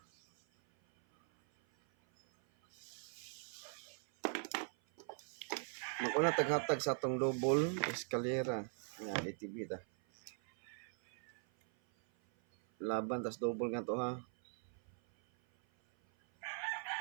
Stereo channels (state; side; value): silent; left; 51 dB below the other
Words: Mag-una taghatag sa atong double eskalera. Yan, DTB ta. Laban tas double nga to ha.